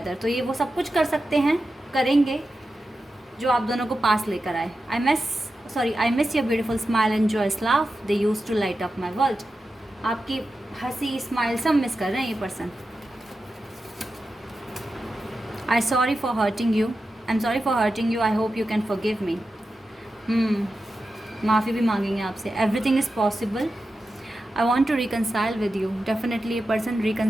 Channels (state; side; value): normal; both; correlation 0.91